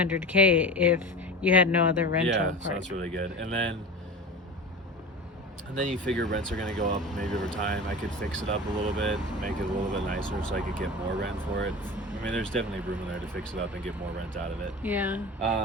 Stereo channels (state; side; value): normal; both; correlation 0.32